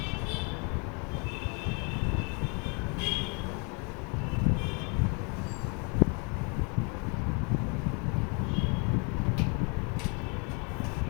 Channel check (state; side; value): quieter; right; 34.4 dB